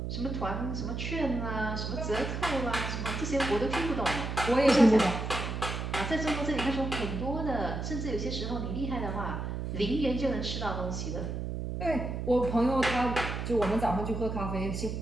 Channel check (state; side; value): noise; right; hum, 4 dB below the sound